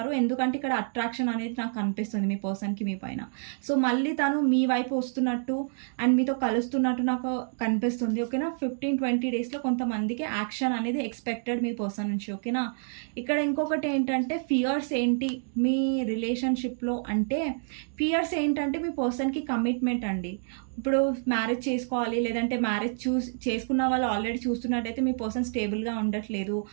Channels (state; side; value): silent; left; digital silence